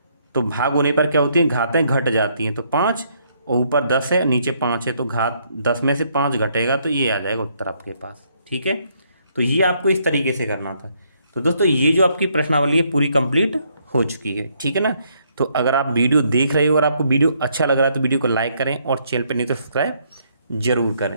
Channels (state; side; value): inverted; both; correlation -0.71